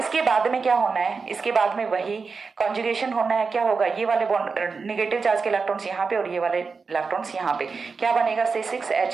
बाद में क्या होना है, इसके बाद में वही कॉन्जुगेशन होना है। क्या होगा, ये वाले बॉन्ड नेगेटिव चार्ज के इलेक्ट्रॉन्स यहाँ पे और ये वाले इलेक्ट्रॉन्स यहाँ पे, क्या बनेगा,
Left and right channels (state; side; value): quieter; left; 4.8 dB